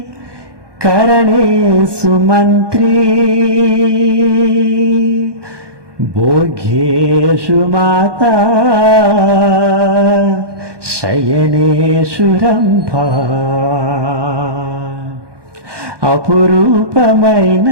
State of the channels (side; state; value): left; late; 1.2 ms